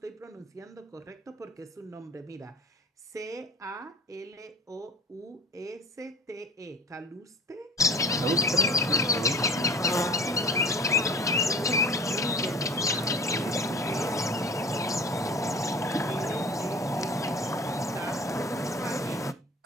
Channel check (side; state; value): both; normal; correlation 0.43